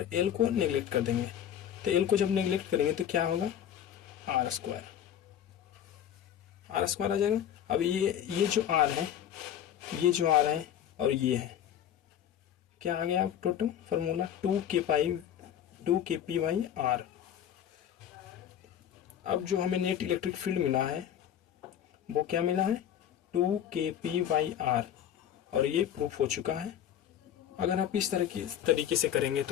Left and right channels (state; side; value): quieter; right; 10.1 dB